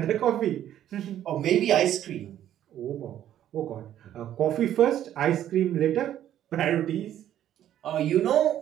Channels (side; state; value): left; quieter; 11.4 dB